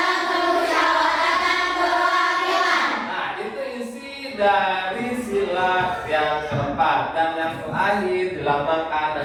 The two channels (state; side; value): identical; both; correlation 1.00